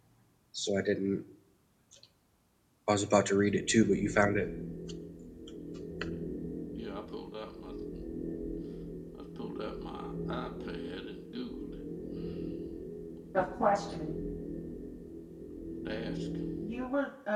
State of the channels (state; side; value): identical; both; correlation 1.00